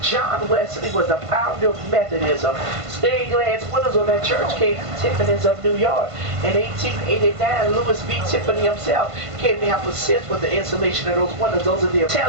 John Wesley was the founder of Methodism. Stained glass windows on that church came from Tiffany's of New York. In 1889, Louis V. Tiffany himself came to help assist with the installation of those windows. Those are the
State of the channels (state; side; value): late; left; 1.5 ms